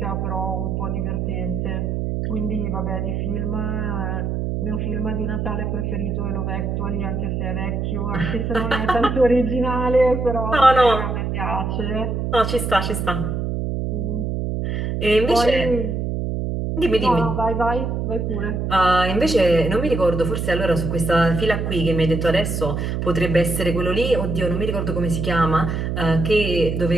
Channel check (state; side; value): noise; right; hum, 1 dB below the sound